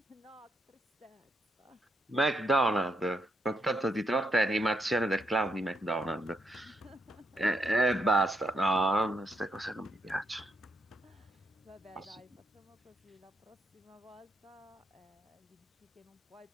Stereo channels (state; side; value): normal; both; correlation 0.77